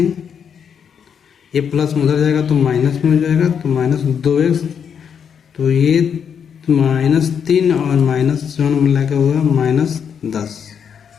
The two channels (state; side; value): quieter; right; 7.4 dB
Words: ये प्लस में उधर जाएगा तो माइनस में हो जाएगा तो -2x, तो ये -3 और -7 मिला के हुआ -10,